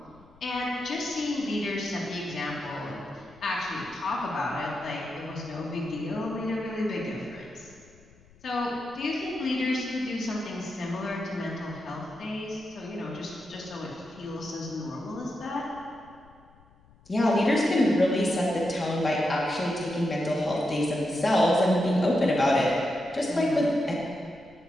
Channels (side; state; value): left; noise; rumble, 27 dB below the sound